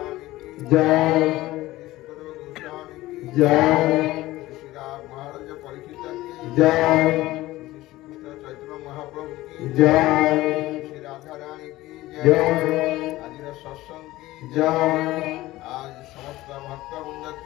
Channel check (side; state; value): right; quieter; 17.4 dB